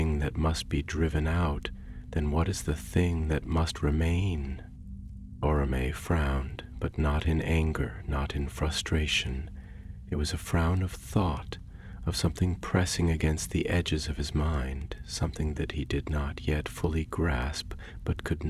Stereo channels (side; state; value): both; identical; correlation 1.00